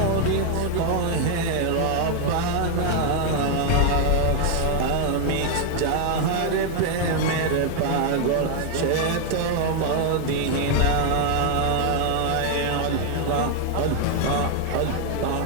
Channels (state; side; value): different; both; correlation 0.00